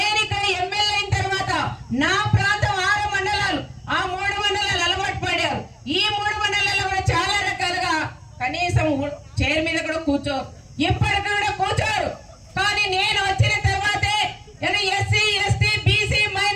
ఇక్కడ ఎమ్మెల్యే అయిన తర్వాత నా ప్రాంతం 6 మండలాలు, ఆ 3 మండలాలు అలవాటు పడారు. ఈ 3 మండలాల్లో కూడా చాలా రకాలుగా కనీసం చైర్ మీద కూడా ఇప్పటికి కూడా కూర్చోరు. కానీ నేను వచ్చిన తర్వాతే ఎస్సీ ఎస్టీ బీసీ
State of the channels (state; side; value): identical; both; correlation 1.00